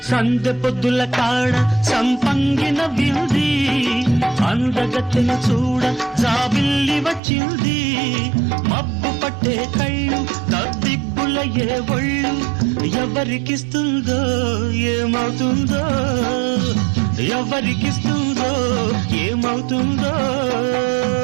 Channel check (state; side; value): drops out; left; at 7.2 s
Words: సందె పొద్దుల కాడ సంపంగిన వింది అందగత్తెను చూడ జాబిల్లి వచ్చింది మబ్బు పట్టే కళ్ళు తద్దిబ్బుల ఏ ఒళ్ళు ఎవరికిస్తుందో ఏమవుతుందో ఎవరికిస్తుందో ఏమవుతుందో